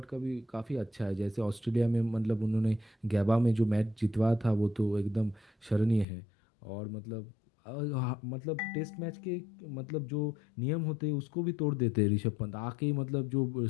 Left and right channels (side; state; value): right; drops out; at 6.1 s